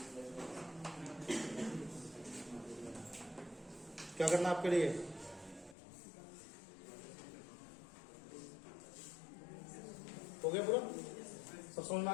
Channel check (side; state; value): right; drops out; at 5.8 s